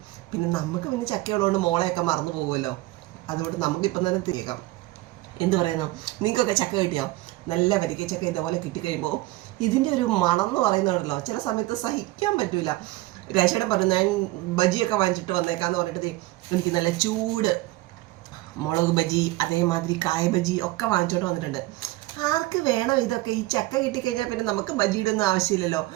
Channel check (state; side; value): quieter; left; 18.9 dB